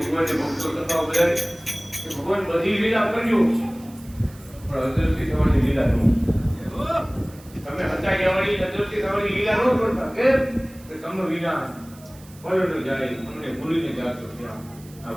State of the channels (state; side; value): noise; right; hiss, 24 dB below the sound